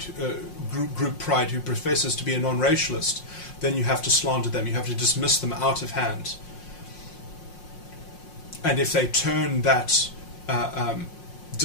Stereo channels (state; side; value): late; right; 5.6 ms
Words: who professes to be a non-racialist, then you have to slander them. You have to dismiss them out of hand. And if they turn that